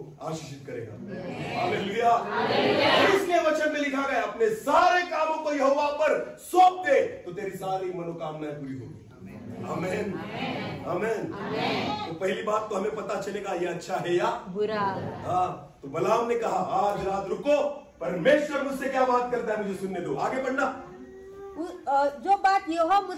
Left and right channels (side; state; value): both; identical; correlation 1.00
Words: आशीषित करेगा। हालेलुया। इसलिए वचन में लिखा गया अपने सारे कामों को यहोवा पर सौंप दे तो तेरी सारी मनोकामनाएं पूरी होगी। आमीन। आमीन। तो पहली बात तो हमें पता चलेगा ये अच्छा है या बुरा। हाँ, तो बलाम ने कहा आज रात रुको, परमेश्वर मुझसे क्या बात करता है मुझे सुनने दो। आगे बढ़ना। जो बात यहोवा